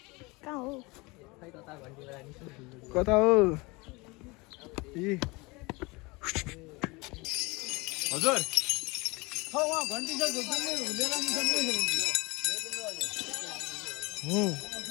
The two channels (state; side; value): quieter; right; 25.1 dB